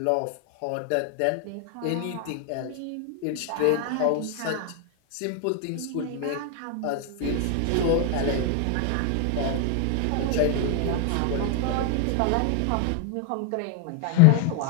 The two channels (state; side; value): different; both; correlation 0.01